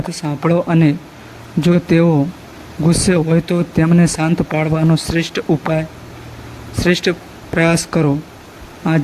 સાંભળો અને જો તેઓ ગુસ્સે હોય તો તેમને શાંત પાડવાનો શ્રેષ્ઠ પ્રયાસ કરો.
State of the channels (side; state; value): both; identical; correlation 1.00